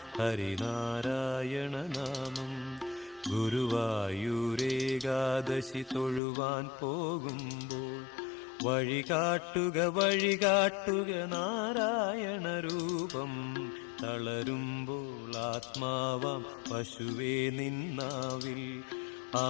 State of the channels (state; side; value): drops out; right; at 6.2 s